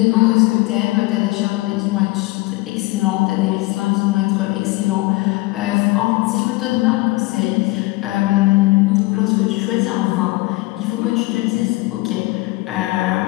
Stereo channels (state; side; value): quieter; right; 21.4 dB